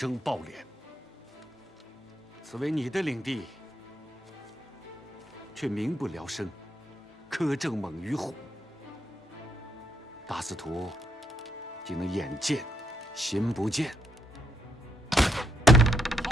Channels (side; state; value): both; normal; correlation 0.76